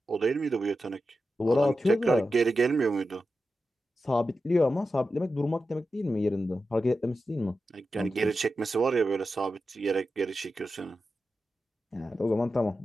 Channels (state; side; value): normal; both; correlation 0.91